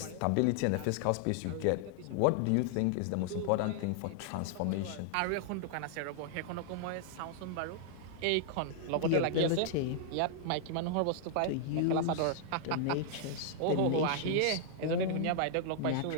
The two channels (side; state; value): both; different; correlation -0.01